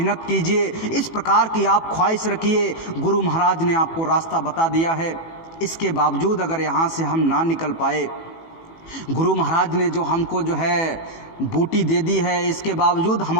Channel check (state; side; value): late; right; 18 ms